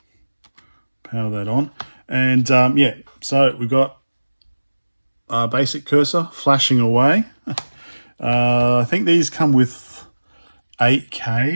Power that on, and yeah, so we've got a basic cursor flashing away. I think these come with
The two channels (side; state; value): both; inverted; correlation -1.00